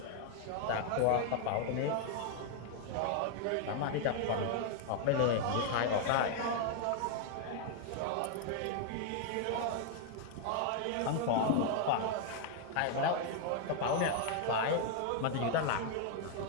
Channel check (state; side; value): different; both; correlation 0.00